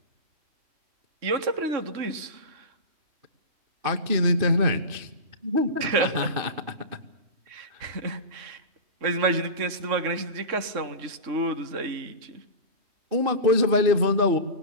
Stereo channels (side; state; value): left; late; 3.6 ms